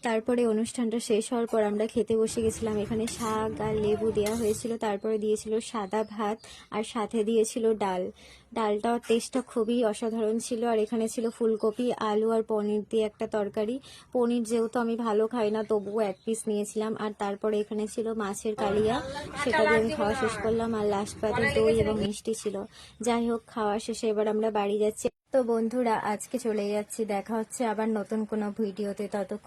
তারপরে অনুষ্ঠানটা শেষ হওয়ার পর আমরা খেতে বসে গেছিলাম। এখানে শাক আর লেবু দেওয়া হয়েছিল, তারপরে দিয়েছিল সাদা ভাত, আর সাথে দিয়েছিল ডাল। ডালটার টেস্টটা খুবই অসাধারণ ছিল। আর এখানে ছিল ফুলকপি, আলু আর পনির দিয়ে একটা তরকারি। পনির যেহেতু আমি ভালো খাই না, তবুও 1 পিস নিয়েছিলাম। আর তারপরে এখানে ছিল মাছের কালিয়া, সেটা দিয়ে আমি খাওয়া শেষ করলাম। আর লাস্ট পাতে দই এবং মিষ্টি ছিল। যাই হোক, খাওয়া শেষে এবার আমরা বাড়ি যাচ্ছি। তো বন্ধুরা, আজকে চলে যাচ্ছি। দেখা হচ্ছে আবার নতুন কোনো ভিডিওতে।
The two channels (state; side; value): identical; both; correlation 1.00